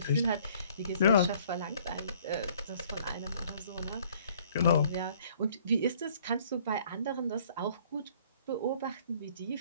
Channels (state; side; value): inverted; both; correlation -0.58